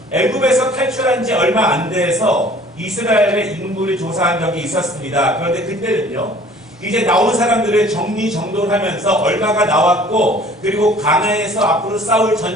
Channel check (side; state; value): both; normal; correlation 0.51